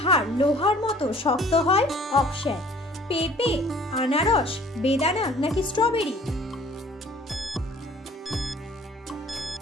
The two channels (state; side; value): normal; both; correlation 0.53